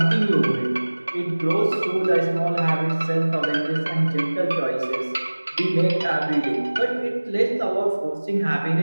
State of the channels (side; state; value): both; inverted; correlation -1.00